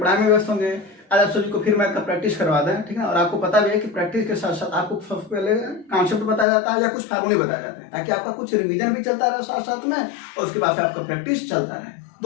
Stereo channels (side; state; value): right; drops out; at 6.5 s